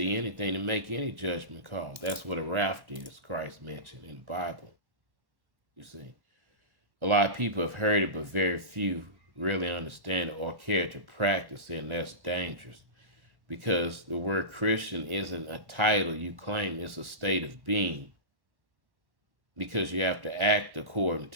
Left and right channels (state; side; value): late; left; 1.1 ms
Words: anything to make any judgment call. That's what a raft is, Christ mentioned in the Bible. You see, a lot of people have heard it, but very few really understand it or care to practice it, and that's dangerous. Because the word Christian isn't a title you claim, it's a state of being. Because you have to act according